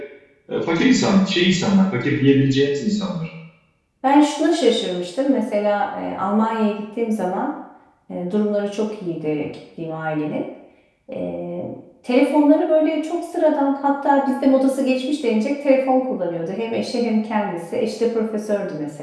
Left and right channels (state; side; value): identical; both; correlation 1.00